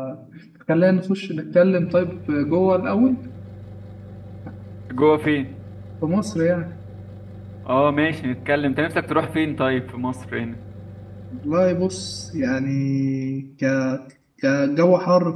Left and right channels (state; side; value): identical; both; correlation 1.00